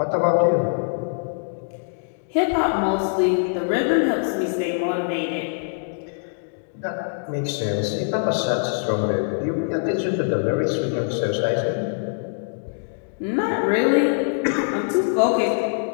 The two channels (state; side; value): silent; right; digital silence